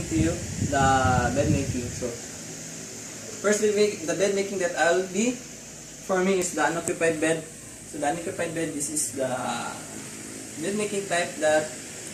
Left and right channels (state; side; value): identical; both; correlation 1.00